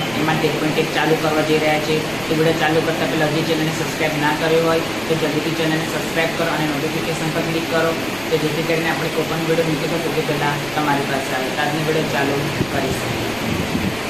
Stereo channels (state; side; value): noise; right; rumble, 17 dB below the sound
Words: એમાં 13.1 ચાલુ કરવા જઈ રહ્યા છીએ. તો વિડીયો ચાલુ કરતાં પહેલાં હજી ચેનલને સબસ્ક્રાઈબ ના કર્યો હોય તો જલ્દીથી ચેનલને સબસ્ક્રાઈબ કરો અને નોટિફિકેશન પર ક્લિક કરો, તો જેથી કરીને આપણે કોઈ પણ વિડીયો મૂકીએ તો સૌથી પહેલાં તમારી પાસે આવે. તો આજનો વિડીયો ચાલુ કરીશું.